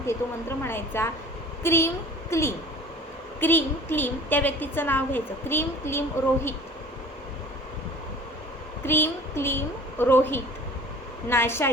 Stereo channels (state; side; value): normal; both; correlation 0.45